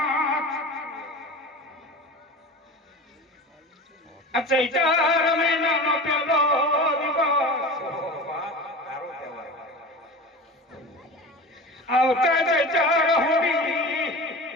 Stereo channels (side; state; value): both; normal; correlation 0.32